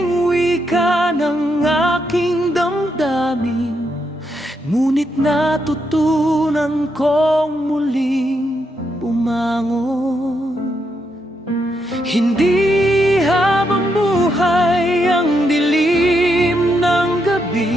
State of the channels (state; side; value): normal; both; correlation 0.80